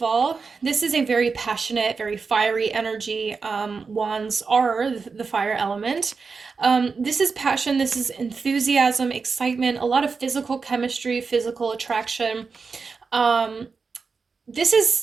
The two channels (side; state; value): left; quieter; 4.9 dB